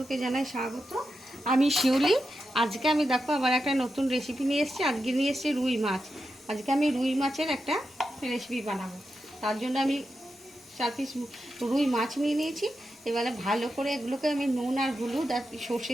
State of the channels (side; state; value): both; normal; correlation 0.88